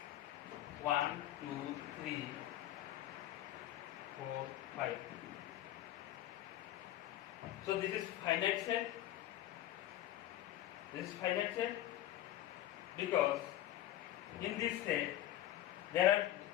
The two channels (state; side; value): quieter; right; 13.6 dB